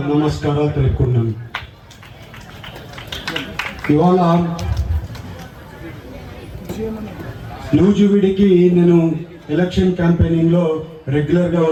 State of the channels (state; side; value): identical; both; correlation 1.00